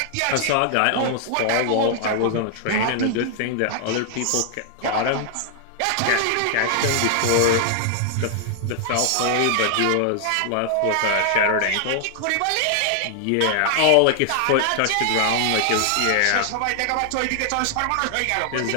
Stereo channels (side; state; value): both; different; correlation 0.00